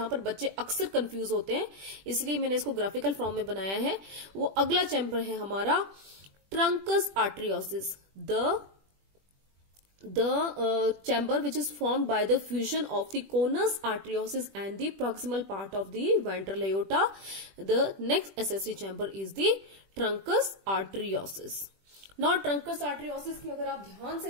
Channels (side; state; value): left; late; 21 ms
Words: पर बच्चे अक्सर कंफ्यूज होते हैं, इसलिए मैंने इसको ग्राफिकल फॉर्म में बनाया है। वो अगला चैम्बर है हमारा trunks आर्टरियोसिस, the chamber which is formed by the fusion of the conus arteriosus and the proximal part of the ventral aorta. The next accessory chamber is the truncus arteriosus. Now truncus arteriosus की अगर आप ध्यान